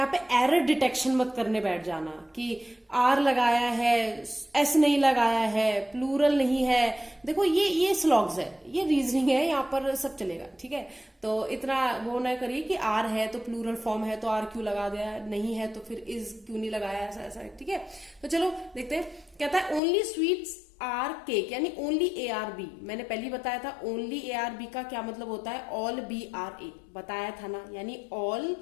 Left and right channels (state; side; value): drops out; right; at 19.8 s